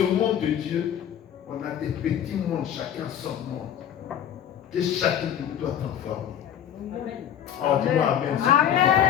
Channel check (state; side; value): quieter; right; 9.9 dB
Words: monde de Dieu, on a des petits mondes, chacun son monde. Et chacun de nous doit transformer. Amen. Oh, dis-moi Amen.